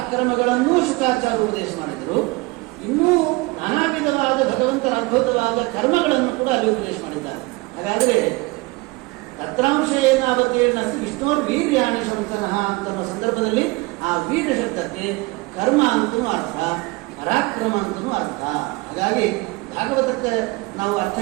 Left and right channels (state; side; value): quieter; left; 23.9 dB